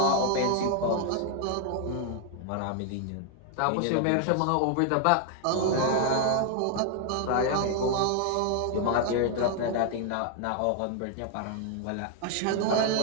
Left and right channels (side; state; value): both; different; correlation 0.00